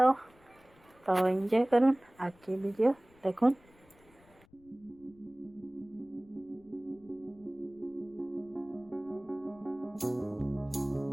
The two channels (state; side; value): noise; left; rumble, 28 dB below the sound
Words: एंजॉय करूँ आगे वीडियो देखुन।